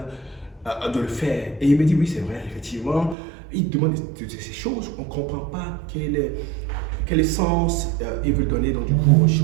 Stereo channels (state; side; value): drops out; left; at 3.2 s